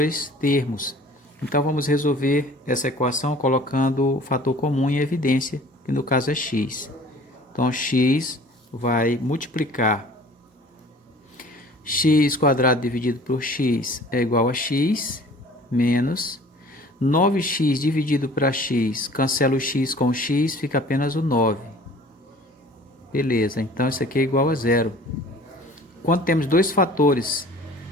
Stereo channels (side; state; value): both; normal; correlation 0.48